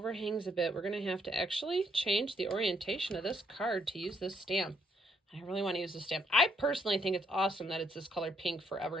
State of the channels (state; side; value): normal; both; correlation 0.72